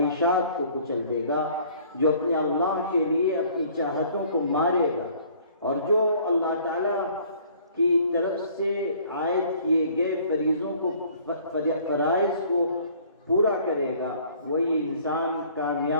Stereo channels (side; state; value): both; inverted; correlation -0.55